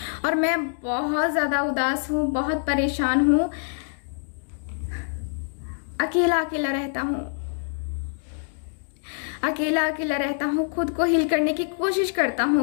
और मैं बहुत ज़्यादा उदास हूँ, बहुत परेशान हूँ। अकेला अकेला रहता हूँ, अकेला अकेला रहता हूँ। खुद को हील करने की कोशिश करता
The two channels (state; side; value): silent; right; digital silence